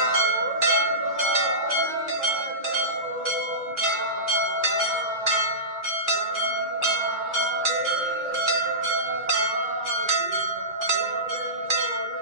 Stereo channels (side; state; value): left; late; 2.0 ms